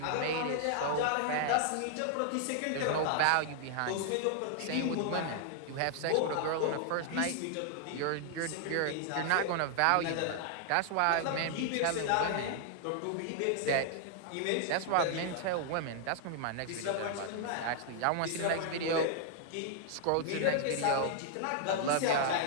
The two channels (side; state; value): both; different; correlation 0.00